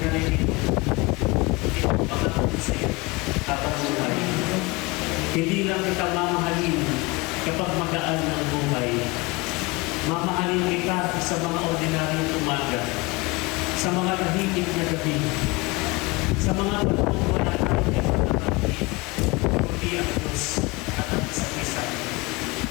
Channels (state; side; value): quieter; right; 24.5 dB